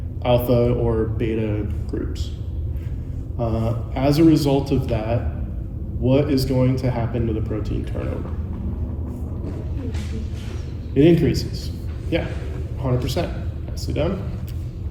alpha or beta groups. As a result of that, what is going to happen to the protein turnover? It increases. Yeah, 100%. Nicely done.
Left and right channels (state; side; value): identical; both; correlation 1.00